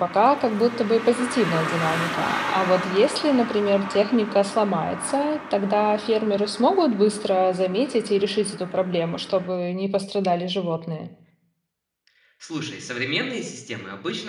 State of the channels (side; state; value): both; identical; correlation 1.00